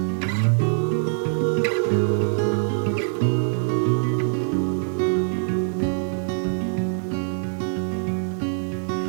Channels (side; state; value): left; silent; digital silence